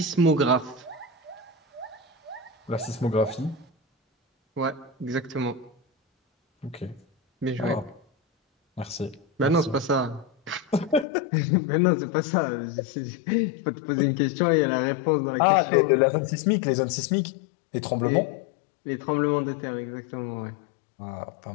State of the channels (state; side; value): drops out; right; at 11.1 s